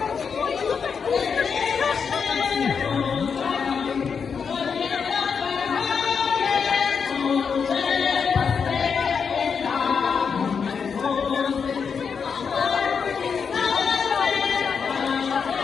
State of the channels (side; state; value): right; quieter; 6.1 dB